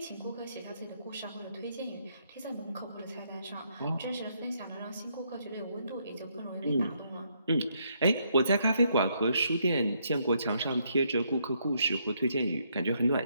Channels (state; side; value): inverted; both; correlation -0.73